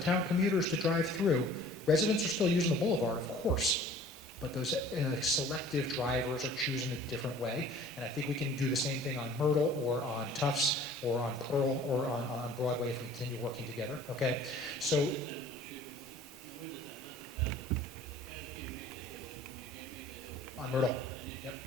commuters to drive through, residents are still using the boulevard, of course, but those selective drivers are choosing a different way. And I think we can do the same thing on Myrtle or on Tufts or on Pearl or on Broadway if we continue working together, okay? So, on Myrtle, yep.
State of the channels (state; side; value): normal; both; correlation 0.49